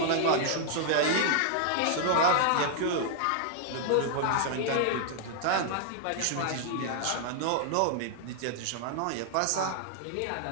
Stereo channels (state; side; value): different; both; correlation 0.00